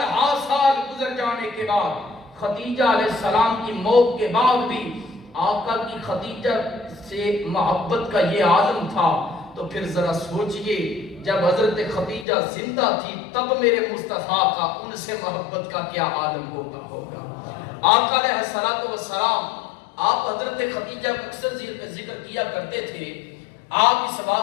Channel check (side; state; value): right; drops out; at 12.2 s